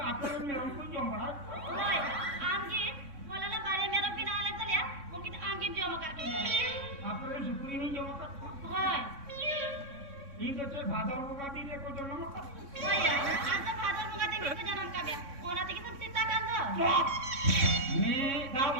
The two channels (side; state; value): left; late; 3.6 ms